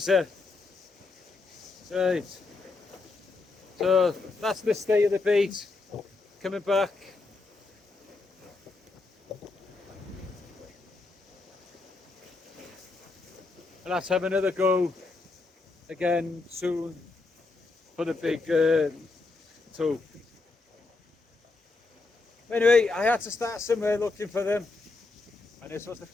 Right. So that's the state of the bait. Coming back. And let's have another go again soon for the big tope. Anyway, I had to start somewhere looking for them, and this was the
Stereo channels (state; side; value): quieter; right; 3.7 dB